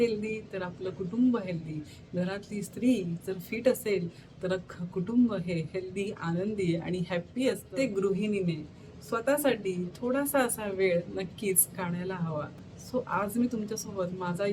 तर आपलं कुटुंब हेल्दी. घरातली स्त्री जर फिट असेल तर अख्खं कुटुंब हे हेल्दी, आनंदी आणि हॅप्पी असतं. ते गृहिणीने स्वतःसाठी थोडासा असा वेळ नक्कीच काढायला हवा. सो आज मी तुमच्यासोबत माझा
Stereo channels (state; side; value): identical; both; correlation 1.00